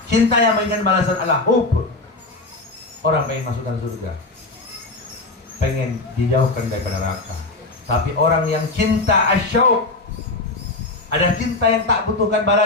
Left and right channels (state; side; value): quieter; right; 3.2 dB